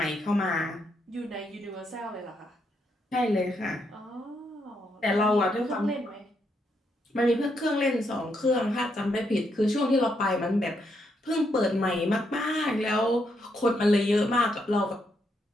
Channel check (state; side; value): normal; both; correlation 0.78